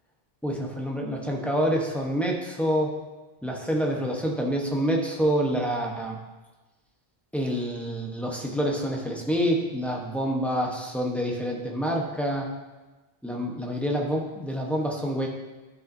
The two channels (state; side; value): normal; both; correlation 0.54